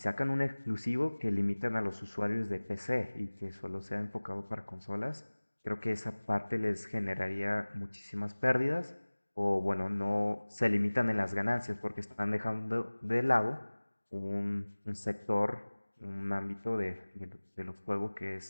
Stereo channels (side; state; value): both; inverted; correlation -1.00